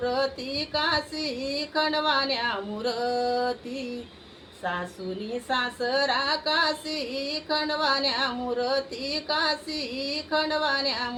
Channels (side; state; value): both; identical; correlation 1.00